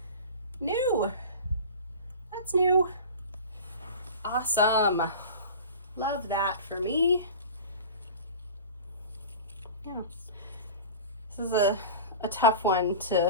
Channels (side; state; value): both; inverted; correlation -0.35